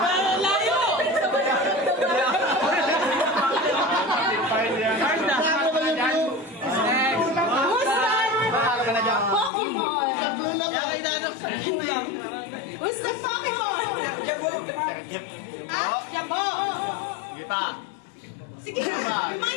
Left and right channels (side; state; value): right; drops out; at 9.5 s